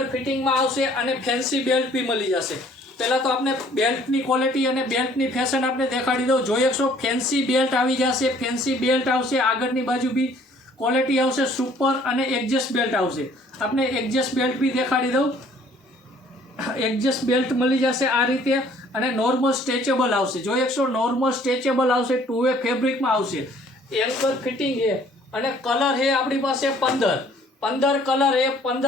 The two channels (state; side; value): normal; both; correlation 0.58